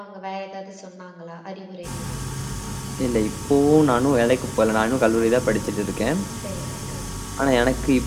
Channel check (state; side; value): identical; both; correlation 1.00